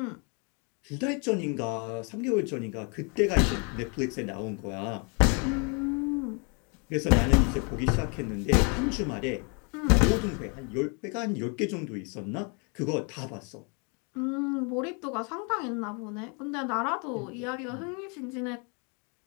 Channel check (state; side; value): quieter; right; 35.2 dB